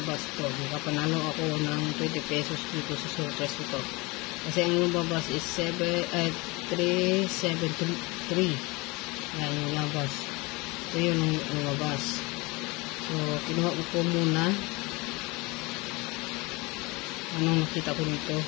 to. Nakapanalo ako ng 20 pesos dito sa surplus ito. Kasi ang lumabas is 373. Yan yung lumabas. Ito yung lumabas. So, kinuha ko muna. Anong nakita ko dito?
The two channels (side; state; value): right; quieter; 25.2 dB